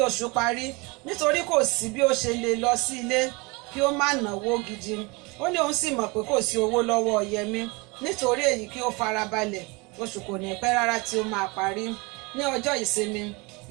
oṣù parí nítorí kò sí bí ó ṣe lè lọ sí ilé kí ó má náwó gidi. Ó ní òun sì mọ̀ pé kò sí owó lọ́wọ́ Yẹmí nítorí èyí kí ó farabalẹ̀ oṣù kò ní pẹ́ rárá tí ó máa parí. Ní ọjọ́ ìsinmi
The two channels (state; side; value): quieter; left; 27.0 dB